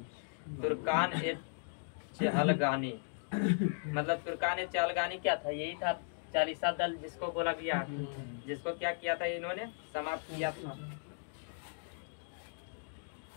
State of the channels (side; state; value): right; silent; digital silence